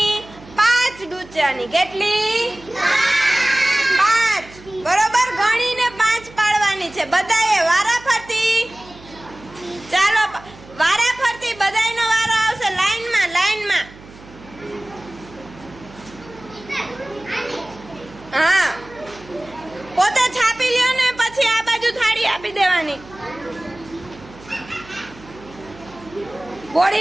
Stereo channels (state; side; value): noise; right; hum, 20 dB below the sound